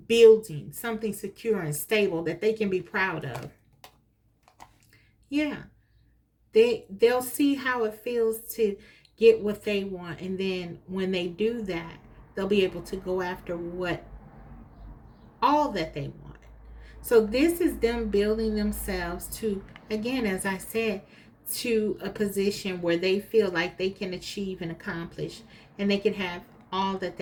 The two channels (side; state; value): both; identical; correlation 1.00